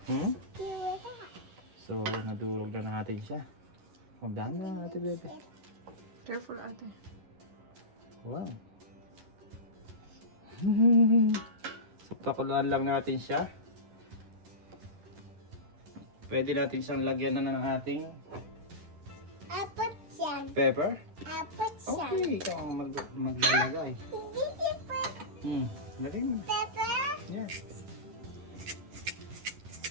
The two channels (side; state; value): left; late; 11 ms